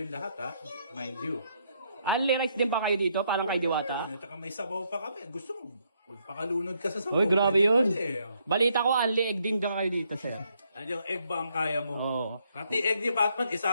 lahat, ha? Mind you. Only rice din pa kayo dito? Parang kay Diwata? At saka may sabaw pa kami. Gusto mo, magpakalunod ka sa sabaw. Uy, grabe Pwede yun. pwede. Balita ko, only egg din ka kayo dito, sir. Ano yung egg ba ang kaya mo? Oo. Pati egg ni Batman,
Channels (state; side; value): inverted; both; correlation -0.73